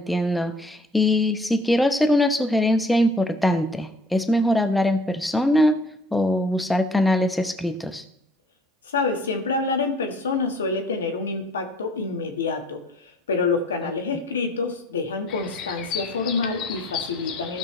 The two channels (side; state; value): both; normal; correlation 0.54